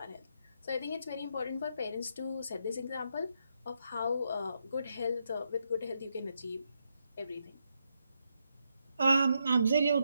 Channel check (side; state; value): both; inverted; correlation -0.80